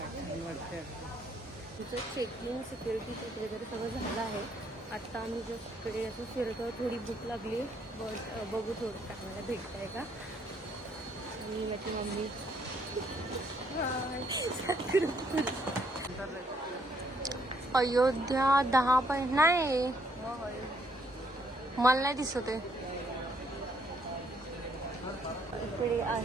तुझं चेकिंग सिक्युरिटी चेक वगैरे सगळं झालं आहे. आत्ता आम्ही जस्ट इकडे असं फिरतो. थोडी भूक लागली, बट बघू थोडं काय मला भेटतं आहे का. आणि माझी मम्मी अयोध्या 10 पॉईंट नाही, मला नाही दिसत आहे. इकडे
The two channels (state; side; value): normal; both; correlation 0.69